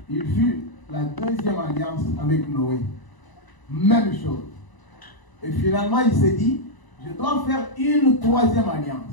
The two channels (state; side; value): late; right; 1.0 ms